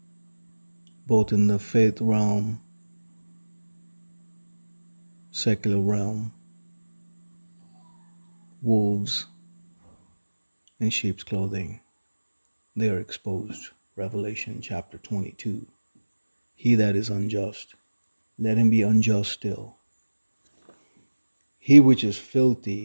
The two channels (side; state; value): both; inverted; correlation -1.00